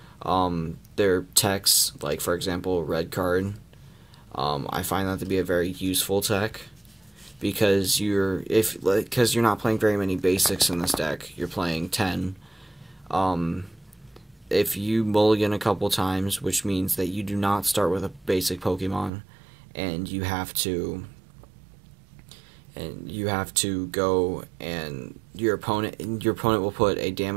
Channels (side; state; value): left; drops out; at 19.1 s